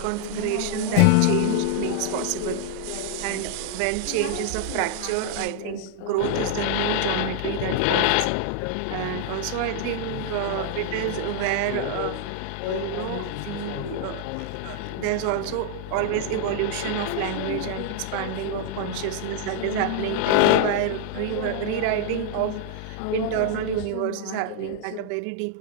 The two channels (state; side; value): different; both; correlation 0.00